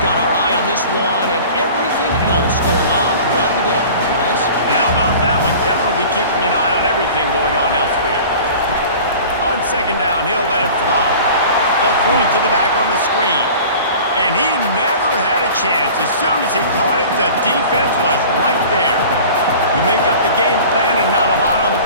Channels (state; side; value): inverted; both; correlation -0.42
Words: our eye on this one and everything else going on throughout the day. Guys? And how about that one? Kevin will be keeping an eye on everything going on elsewhere. On second down, he'll let it fly. They'll throw it to the back on the screen. And he never had a chance. As soon as he caught it, the defense was right there. You make up the game plan and not a lot on the